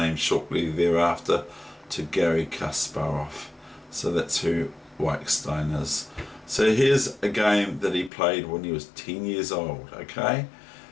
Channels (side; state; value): right; drops out; at 8.1 s